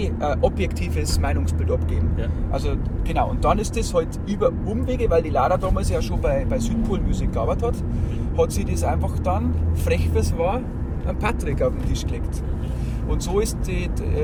ein objektives Meinungsbild abgeben. Ja. Also genau, und dann ist das halt über Umwege, weil die Lara damals ja schon bei Südpol Musik gearbeitet hat sie das einfach dann, frech wie es war, an Patrick auf den Tisch gelegt. Und so ist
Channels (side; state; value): both; identical; correlation 1.00